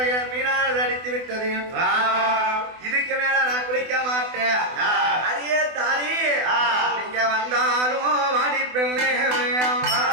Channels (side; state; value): left; late; 24 ms